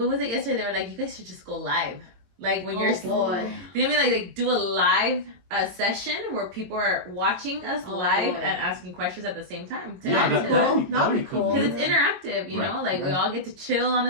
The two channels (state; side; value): late; left; 22 ms